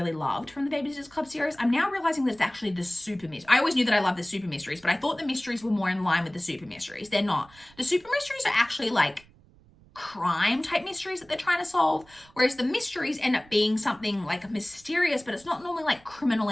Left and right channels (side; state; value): right; noise; rumble, 27 dB below the sound